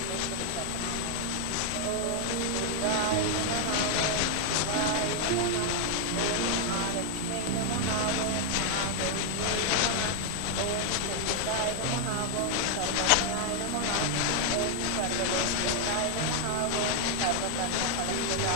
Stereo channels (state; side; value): different; both; correlation 0.00